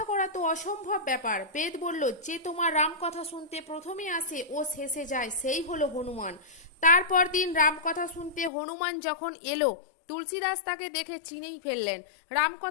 করা তো অসম্ভব ব্যাপার। বেদ বলল, যে তোমার রামকথা শুনতে প্রথমে আসে ও শেষে যায়, সেই হলো হনুমান। তারপর দিন রামকথা শুনতে হনুমান যখন এলো, তুলসীদাস তাকে দেখে চিনেই ফেললেন।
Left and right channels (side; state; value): right; drops out; at 8.5 s